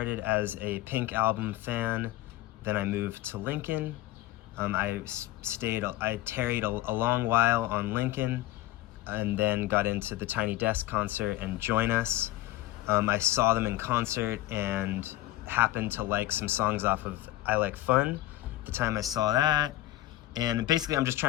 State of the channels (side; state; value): right; quieter; 15.8 dB